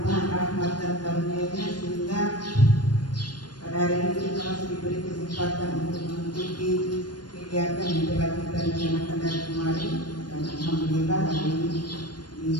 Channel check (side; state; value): right; late; 0.70 ms